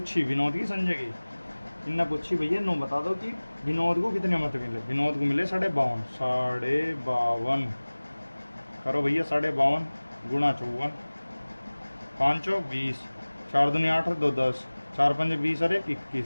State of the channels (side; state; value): both; inverted; correlation -1.00